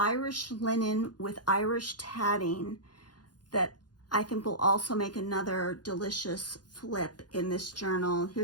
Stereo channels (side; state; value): right; late; 0.70 ms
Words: linen with Irish tatting that I think will also make another delicious flip in this journal.